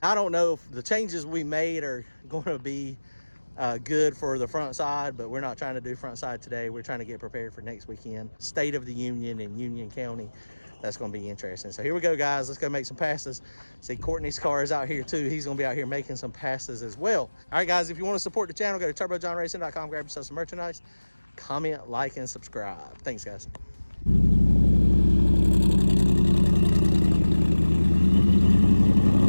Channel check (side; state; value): both; inverted; correlation -1.00